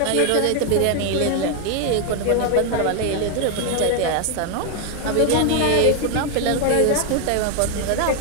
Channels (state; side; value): different; both; correlation 0.00